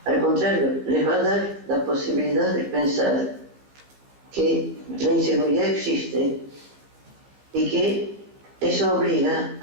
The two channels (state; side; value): late; left; 15 ms